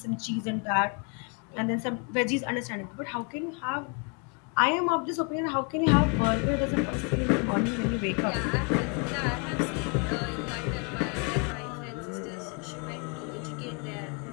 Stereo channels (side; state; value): right; quieter; 35.1 dB